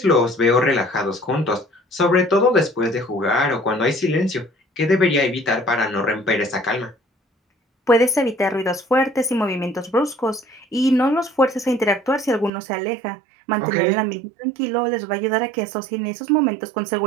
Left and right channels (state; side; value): drops out; left; at 12.5 s